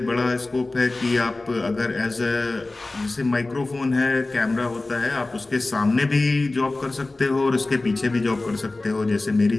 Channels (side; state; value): right; quieter; 3.1 dB